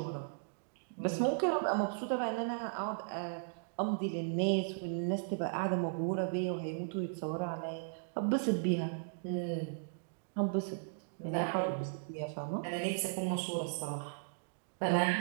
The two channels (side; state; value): left; silent; digital silence